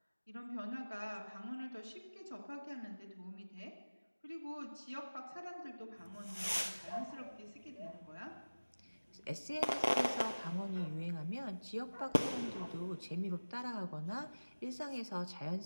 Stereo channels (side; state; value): both; inverted; correlation -1.00